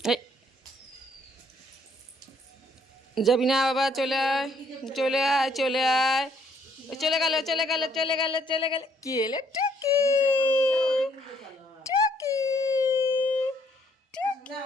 যাবি না বাবা, চলে আয়, চলে আয়, চলে আয়। চলে গেল, চলে গেল, চলে গেল, চলে গেল। কি এলে? টুকি টুকি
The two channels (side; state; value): both; normal; correlation 0.67